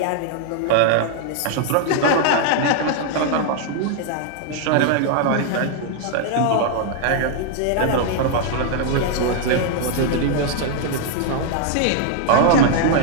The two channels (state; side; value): different; both; correlation 0.00